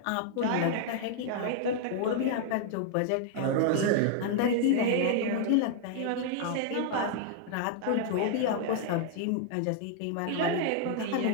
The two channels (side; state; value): both; different; correlation 0.00